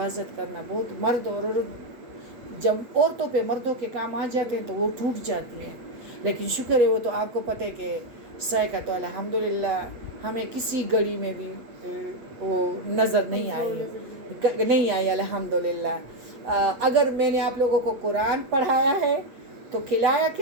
کرنا، بہت مرد اور عورت جب عورتوں پہ مردوں کے کام آ جاتے ہیں تو وہ ٹوٹ جاتی ہیں، لیکن شکر ہے وہ تو آپ کو پتہ ہے کہ سائقہ تو الحمدللہ ہمیں کسی گھڑی میں بھی وہ نظر نہیں آئی الحمدللہ۔ اگر میں نے آپ لوگوں کو قرآن پڑھایا ہے تو کھلایا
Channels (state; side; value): late; left; 7.8 ms